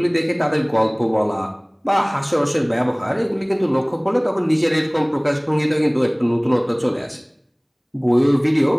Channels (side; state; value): both; identical; correlation 1.00